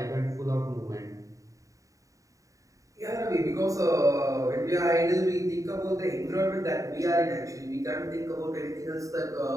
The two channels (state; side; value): late; left; 0.16 ms